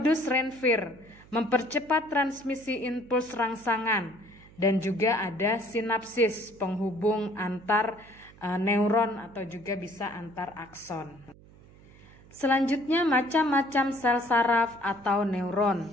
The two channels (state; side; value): noise; right; hum, 24 dB below the sound